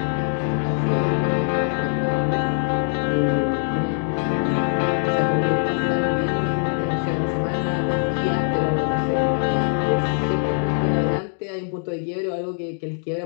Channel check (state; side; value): silent; right; 64 dB below the other